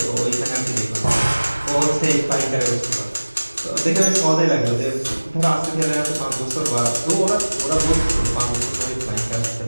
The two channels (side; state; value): both; inverted; correlation -1.00